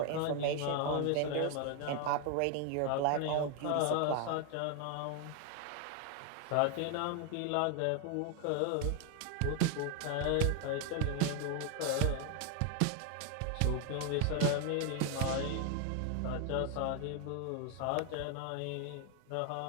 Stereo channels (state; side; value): different; both; correlation 0.01